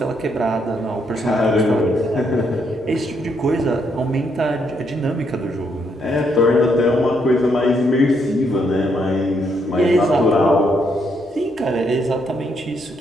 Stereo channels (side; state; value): both; normal; correlation 0.75